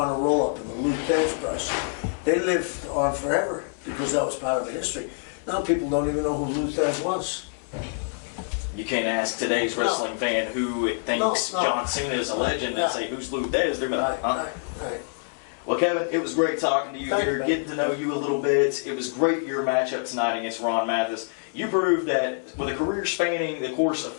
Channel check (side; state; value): right; silent; 60 dB below the other